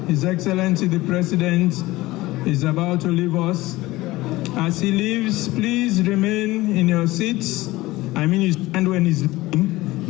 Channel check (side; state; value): right; quieter; 18.9 dB